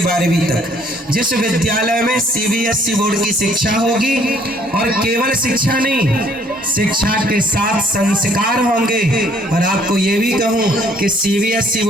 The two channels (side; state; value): both; normal; correlation 0.62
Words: 12वीं तक, जिस विद्यालय में CBSE बोर्ड की शिक्षा होगी। और केवल शिक्षा नहीं, शिक्षा के साथ संस्कार होंगे। और आपको ये भी कहूं कि CBSE